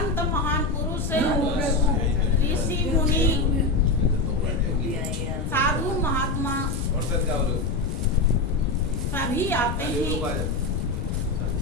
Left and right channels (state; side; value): noise; left; rumble, 3 dB below the sound